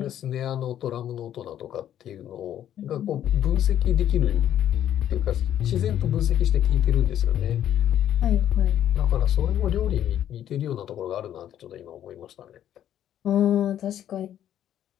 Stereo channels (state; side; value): quieter; right; 10.9 dB